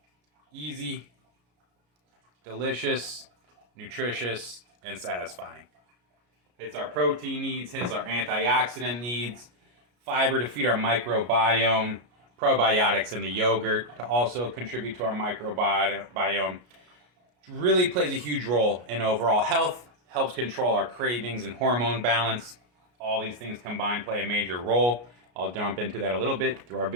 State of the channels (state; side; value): late; left; 33 ms